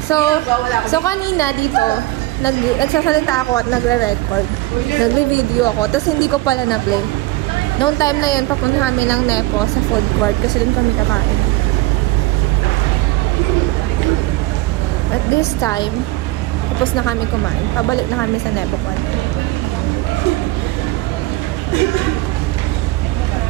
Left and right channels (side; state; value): left; quieter; 18.9 dB